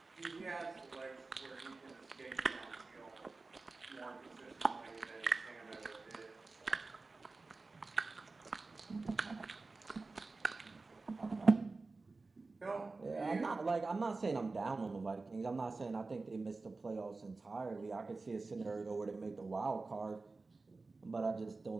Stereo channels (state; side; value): quieter; left; 3.7 dB